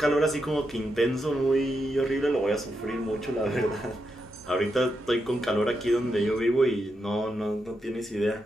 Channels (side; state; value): both; normal; correlation 0.84